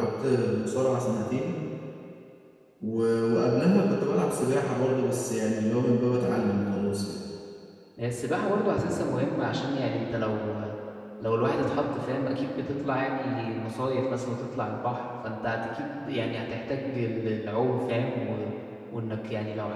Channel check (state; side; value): identical; both; correlation 1.00